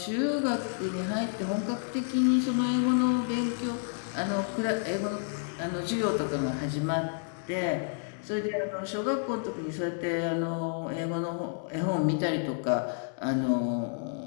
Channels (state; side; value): silent; right; 58 dB below the other